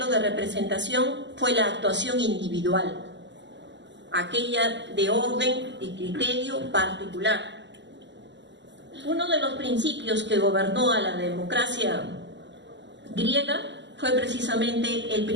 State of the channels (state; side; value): late; left; 0.52 ms